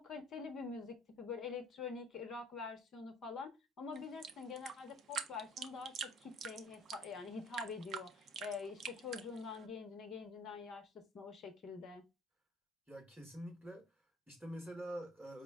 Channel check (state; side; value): normal; both; correlation 0.52